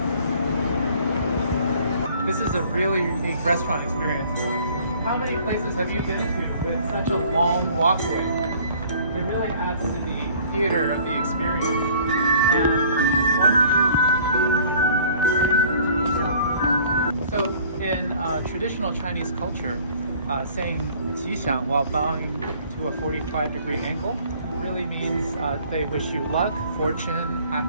This is a really unique restaurant experience. How many places have you been to with such a long walkway? It really adds to the theater of the experience. And so in traditional Chinese culture, saying 吉祥 while bowing to a 45-degree angle really means they wish you luck, fortune,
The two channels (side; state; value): both; inverted; correlation -0.54